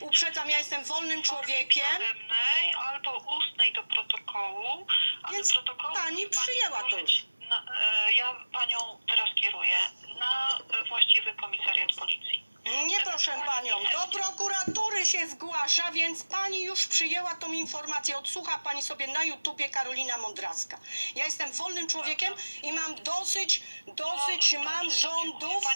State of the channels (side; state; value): both; inverted; correlation -1.00